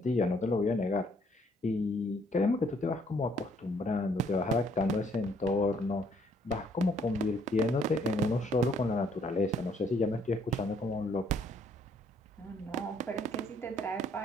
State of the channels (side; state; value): both; normal; correlation 0.66